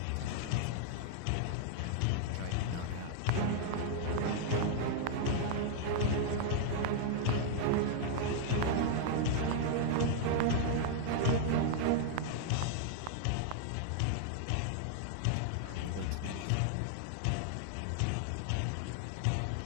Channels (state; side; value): different; both; correlation 0.00